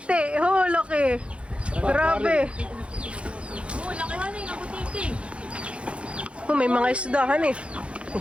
Oh, laki. Grabe. Oo, laki hanay ng butiti. Oh, may mga isdahan eh.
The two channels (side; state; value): left; late; 0.060 ms